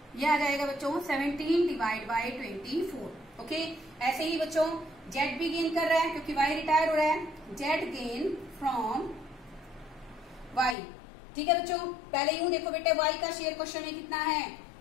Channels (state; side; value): drops out; right; at 10.8 s